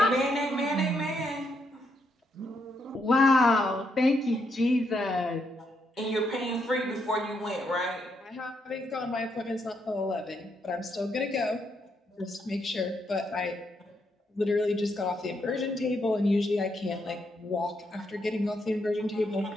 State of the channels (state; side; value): normal; both; correlation 0.78